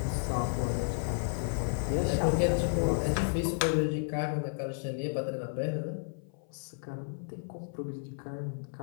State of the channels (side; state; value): right; silent; 56 dB below the other